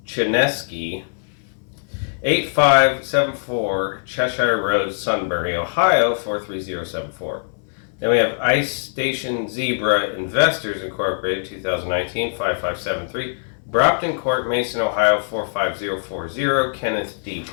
Chinesky, 8574 Cheshire Road, Sunbury, Ohio, 43074. Then we have Ice Station Zebra Investors Incorporated, 2019, 5573. Brompton Court, Mason, Ohio, 45040. Kenneth D.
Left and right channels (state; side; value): silent; right; 64 dB below the other